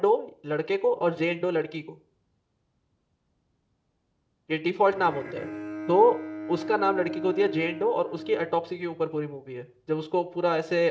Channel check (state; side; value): identical; both; correlation 1.00